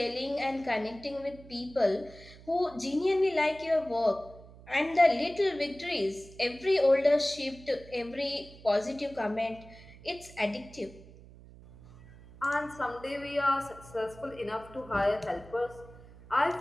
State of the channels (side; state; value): right; noise; hum, 20 dB below the sound